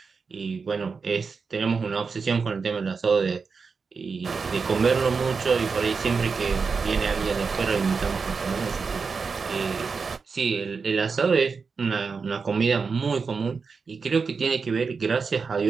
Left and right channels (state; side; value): quieter; left; 5.0 dB